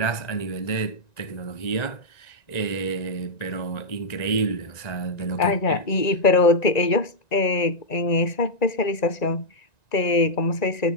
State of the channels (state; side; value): late; right; 1.9 ms